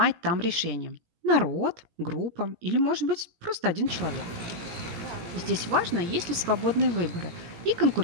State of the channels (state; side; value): late; left; 17 ms